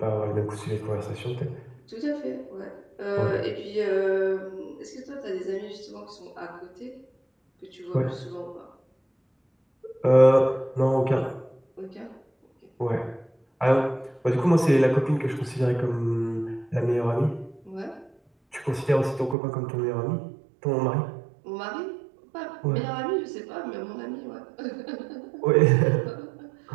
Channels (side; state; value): left; drops out; at 19.4 s